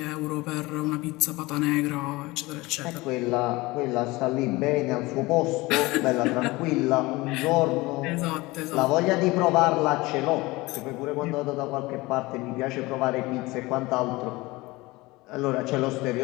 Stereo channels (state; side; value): quieter; right; 21.5 dB